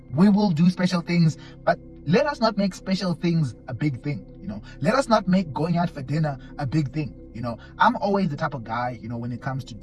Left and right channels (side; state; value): both; identical; correlation 1.00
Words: will do special things, but let us not make special things a big thing. Let us not make going out for dinner a big thing. I'm always the type of guy, when it comes to